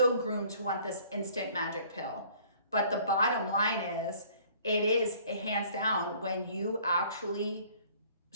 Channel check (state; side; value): inverted; both; correlation -0.55